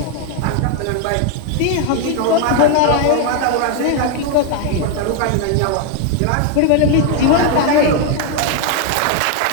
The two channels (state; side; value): different; both; correlation 0.01